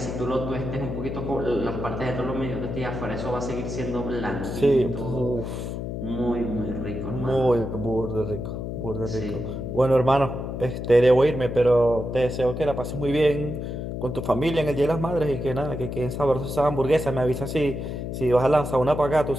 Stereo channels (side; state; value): left; noise; hum, 5 dB below the sound